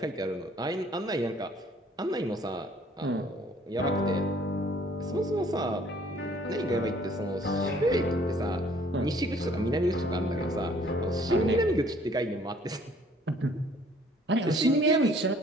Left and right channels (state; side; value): normal; both; correlation 0.58